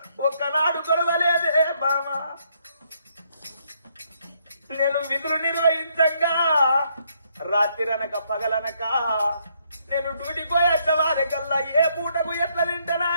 ఒక్కనాడు కొడవలేదే బావా. నేను విధులు నిర్వహించంగా రాత్రిరనక పగలనక నేను డ్యూటీ పోయేటవారికల్లా ఏ పూటకు ఎట్లా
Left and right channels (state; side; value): inverted; both; correlation -0.72